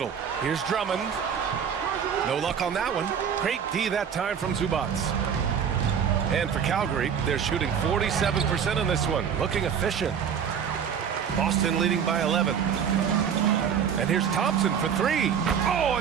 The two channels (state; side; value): quieter; left; 7.7 dB